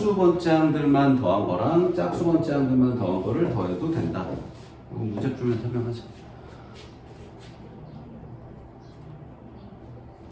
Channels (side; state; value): both; identical; correlation 1.00